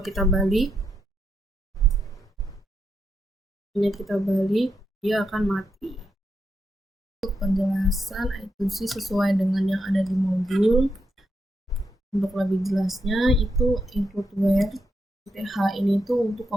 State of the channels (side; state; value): both; normal; correlation 0.82